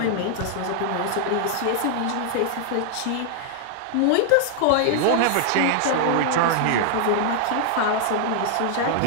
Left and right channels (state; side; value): different; both; correlation 0.00